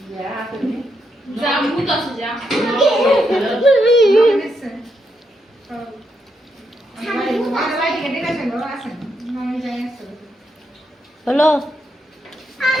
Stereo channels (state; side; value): normal; both; correlation 0.80